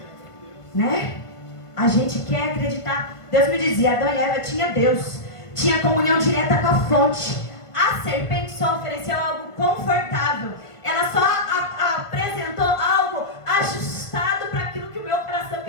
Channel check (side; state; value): right; late; 1.5 ms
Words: né? A gente quer acreditar. Deus me dizia, Adão e Eva tinha Deus, tinha comunhão direta com a fonte. A serpente só ofereceu algo confortável, ela só apresentou algo ajustado para aquilo que o meu coração